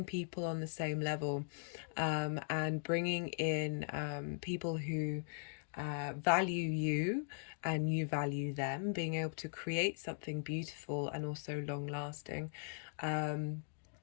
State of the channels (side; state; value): right; silent; digital silence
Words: people on the same level, and bringing in people who value you and you value them, being able to create something beautiful and also long lasting. And